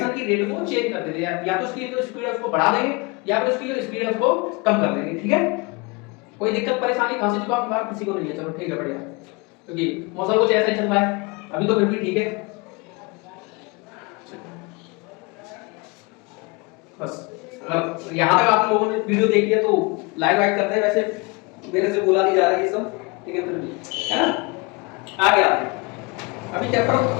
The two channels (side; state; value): right; quieter; 27.3 dB